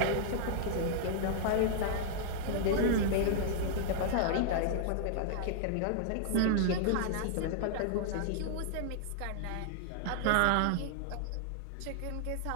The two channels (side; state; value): both; different; correlation -0.01